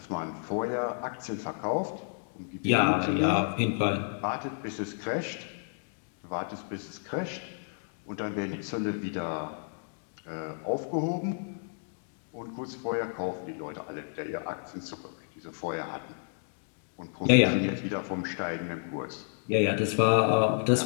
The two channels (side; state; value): right; silent; digital silence